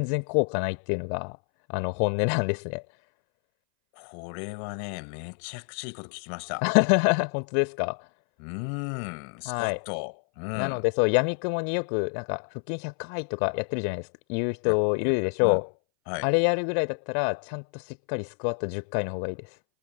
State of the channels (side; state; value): right; silent; 60 dB below the other